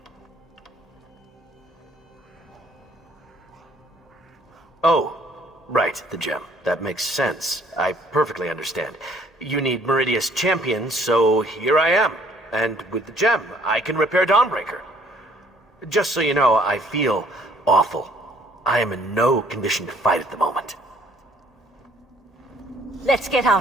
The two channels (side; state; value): both; normal; correlation 0.60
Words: Oh, right, the gem. That makes sense. I perfectly understand. You need Meridia's champion, so here I am. And with the gem, I can repair Dawnbreaker. Just so you know, I feel awful. I am in no condition to fight at the moment. Let's get